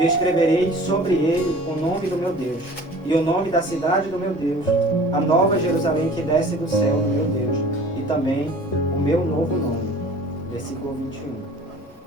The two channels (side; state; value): both; normal; correlation 0.45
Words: escreverei sobre ele o nome do meu Deus, e o nome da cidade do meu Deus, a nova Jerusalém que desce do céu do meu Deus, e também o meu novo nome. Versículo 21.